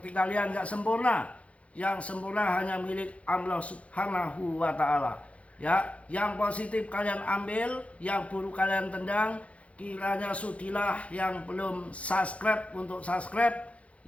kalian, nggak sempurna. Yang sempurna hanya milik Allah Subhanahu wa Ta'ala ya. Yang positif kalian ambil, yang buruk kalian tendang. Kiranya sudilah yang belum subscribe untuk subscribe,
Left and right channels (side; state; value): right; late; 0.064 ms